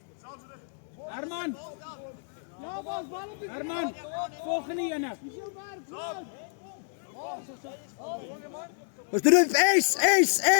Herman. Ja, Bas, bal op die Herman. Volgende ene. Ons doen dit ace.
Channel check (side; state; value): right; silent; digital silence